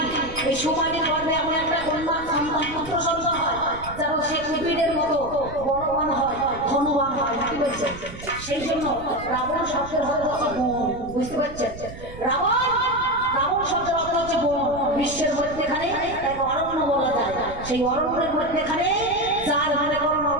এই সুমালির গর্ভে এমন একটা কন্যা সন্তান, পুত্র সন্তান হয় যেন সে কুবিরের মতো বলবান হয়, ধনবান হয়। নাকি বলছেন? সেই জন্য রাবণ শব্দের হতে হচ্ছে বন। বুঝতে পারছেন? রাবণ শব্দের অর্থ হচ্ছে বন। বিশ্বের মধ্যেখানে এক অরণ্য বলা যায়, সেই অরণ্যের মধ্যেখানে যার মনে করণ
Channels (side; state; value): right; noise; rumble, 14 dB below the sound